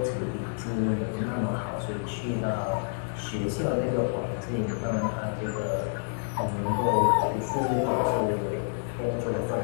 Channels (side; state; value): right; silent; digital silence